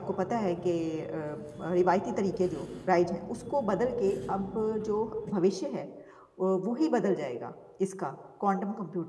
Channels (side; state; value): both; identical; correlation 1.00